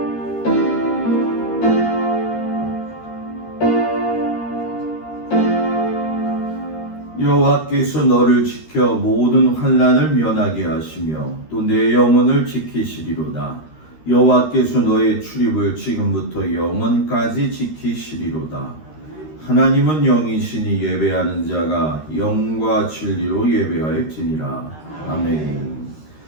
여호와께서 너를 지켜 모든 환난을 면하게 하시며 또 내 영혼을 지키시리로다. 여호와께서 너의 출입을 지금부터 영원까지 지키시리로다. 하나님은 영이시니 예배하는 자가 영과 진리로 예배할지니라. 아멘.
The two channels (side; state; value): right; late; 13 ms